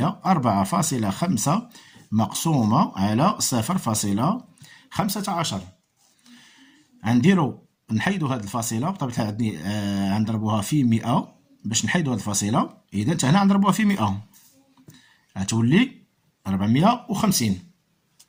4.5 مقسومه على 0.15. غنديرو نحيدو هاد الفاصله بطبيعه الحال، غنضربوها في 100 باش نحيدو هاد الفاصله. اذا حتى هنا غنضربوها في 100 غتولي 450،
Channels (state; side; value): identical; both; correlation 1.00